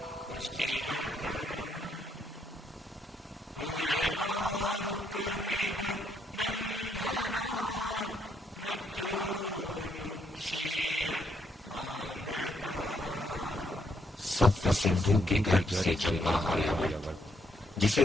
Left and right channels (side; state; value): both; normal; correlation 0.75